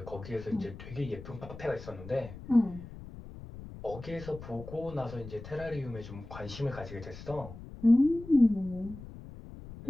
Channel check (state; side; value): noise; left; rumble, 14 dB below the sound